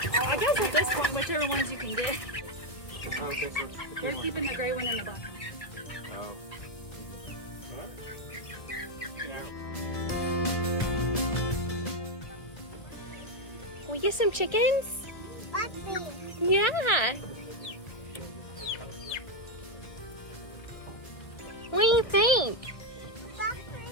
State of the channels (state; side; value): late; right; 1.6 ms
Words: I guess at this point, whichever ones you can get. Oh, okay, so You're keeping the gray one in the back. Oh. We get some chickens? Yeah. What do you think?